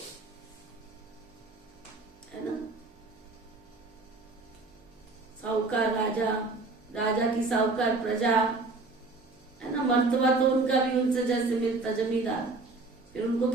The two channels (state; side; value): quieter; left; 3.5 dB